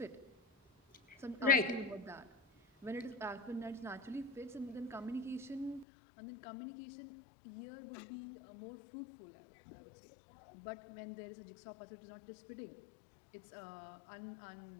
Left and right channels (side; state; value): right; drops out; at 5.9 s